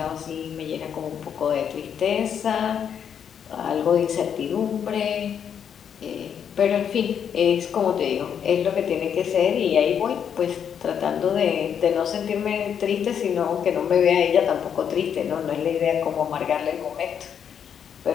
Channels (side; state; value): right; quieter; 8.1 dB